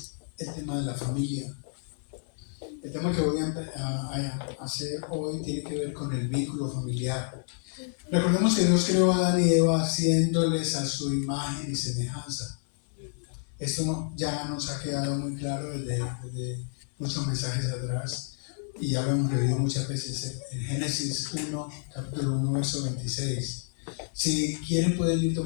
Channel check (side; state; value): right; silent; digital silence